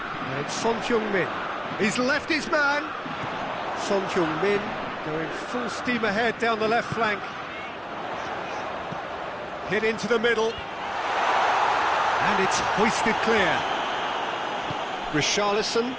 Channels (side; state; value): both; identical; correlation 1.00